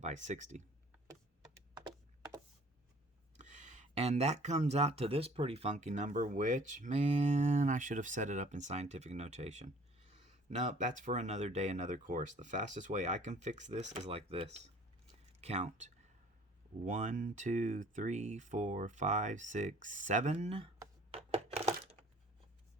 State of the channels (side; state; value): both; normal; correlation 0.53